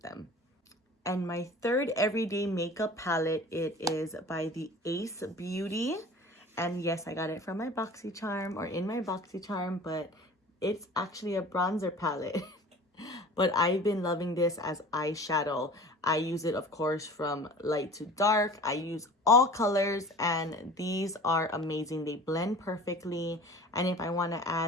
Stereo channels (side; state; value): both; normal; correlation 0.42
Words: them. And my third everyday makeup palette, it is by the Ace Beauty. And yes, I got it from my BoxyCharm, or in my BoxyCharm, but it's actually a bronzer palette. But I've been loving this as eyeshadow. I use it, of course, from light to dark. I use all colors, and these are amazing. They blend perfectly. And if I want to